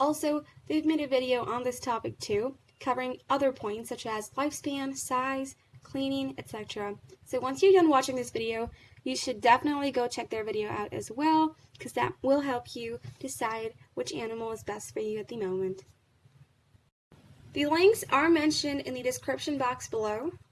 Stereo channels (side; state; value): both; identical; correlation 1.00